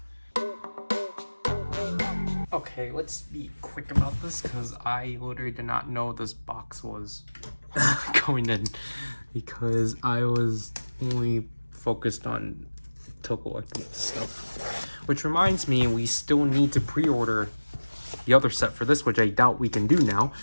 Okay, let's be quick about this because I literally did not know this box was going in because I was only focused on collecting stuff. Which reminds me, we still need to pre-order the other set for this, which I doubt we can do now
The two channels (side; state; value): both; inverted; correlation -1.00